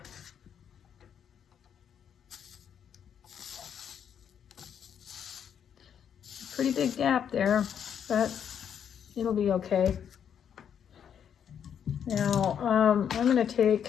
Pretty big gap there, but it'll be okay. Now, I'm going to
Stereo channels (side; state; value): right; quieter; 8.4 dB